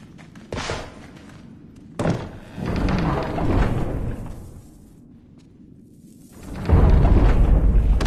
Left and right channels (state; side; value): identical; both; correlation 1.00